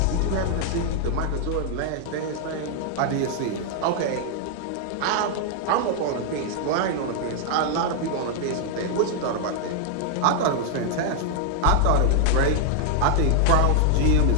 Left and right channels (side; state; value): both; different; correlation 0.00